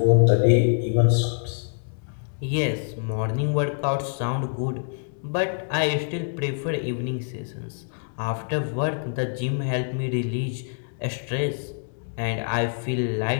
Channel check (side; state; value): right; silent; digital silence